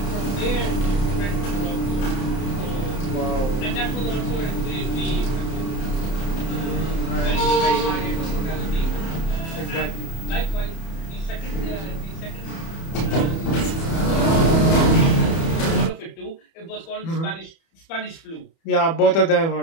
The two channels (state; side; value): late; right; 30 ms